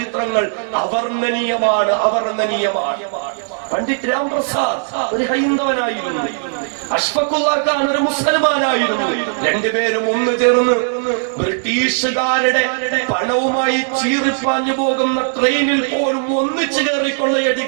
അവർണ്ണനീയമാണ്. പണ്ഡിറ്റ് രാംപ്രസാദ് ഒരു ഹൈന്ദവനായിരുന്നു, അഷ്ഫഖുല്ലാ ഖാൻ ഒരു മുസൽമാനായിരുന്നു. രണ്ടുപേരും ഒന്ന് ചേർന്ന് ബ്രിട്ടീഷുകാരുടെ പണവുമായി ചീറിപ്പാഞ്ഞു പോകുന്ന ട്രെയിനിൽ പോലും ഒന്നിച്ചു കയറി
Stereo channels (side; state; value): left; silent; digital silence